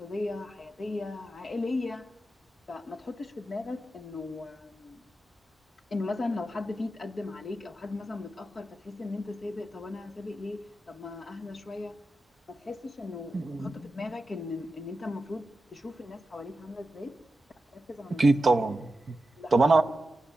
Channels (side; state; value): both; normal; correlation 0.91